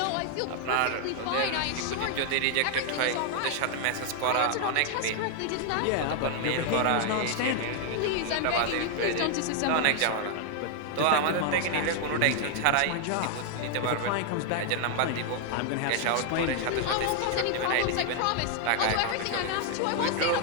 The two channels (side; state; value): both; different; correlation 0.00